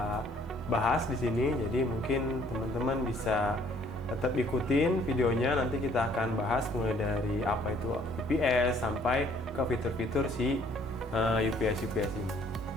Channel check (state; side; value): normal; both; correlation 0.61